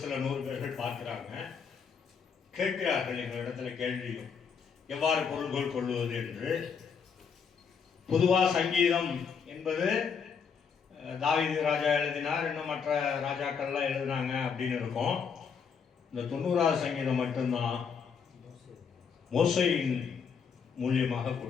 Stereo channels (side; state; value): right; quieter; 6.4 dB